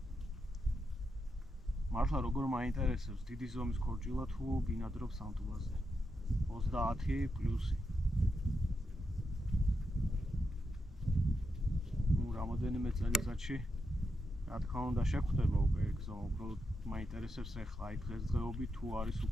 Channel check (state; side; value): normal; both; correlation 0.85